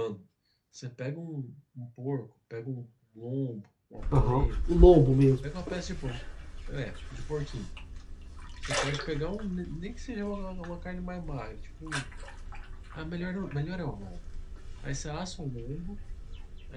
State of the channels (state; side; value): identical; both; correlation 1.00